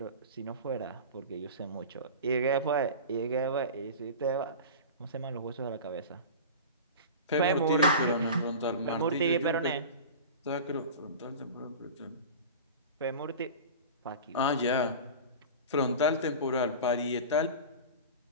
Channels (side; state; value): both; inverted; correlation -0.32